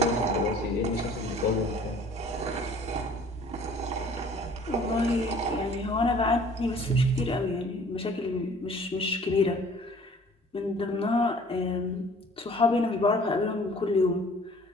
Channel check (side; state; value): both; normal; correlation 0.52